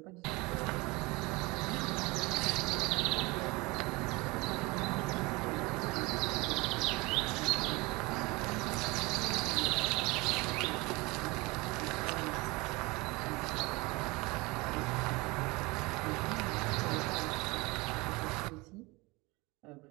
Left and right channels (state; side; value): quieter; left; 24.3 dB